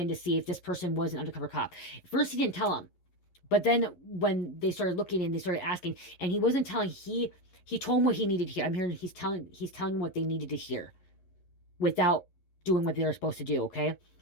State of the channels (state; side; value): late; right; 11 ms